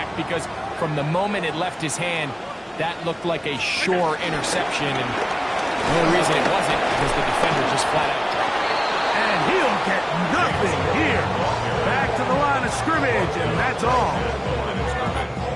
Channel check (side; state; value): both; identical; correlation 1.00